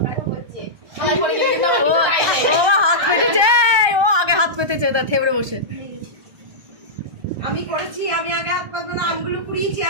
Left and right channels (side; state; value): left; late; 1.2 ms